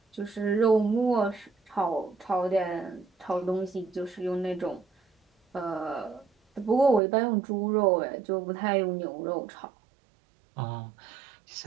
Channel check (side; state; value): left; drops out; at 7.0 s